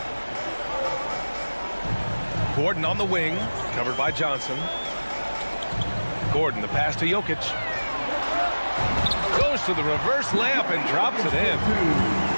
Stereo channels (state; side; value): inverted; both; correlation -1.00